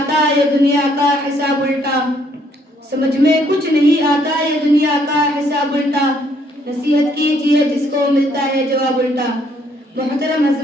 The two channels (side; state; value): both; normal; correlation 0.67